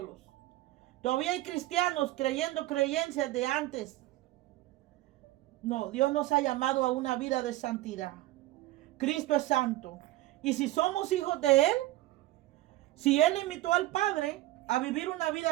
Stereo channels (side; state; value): left; quieter; 16.8 dB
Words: Todavía hay cristianos creyendo creencias de antes. No, Dios nos ha llamado a una vida de santidad. Cristo es santo. Y si somos hijos de Él, si Él invitó al Padre a vivir una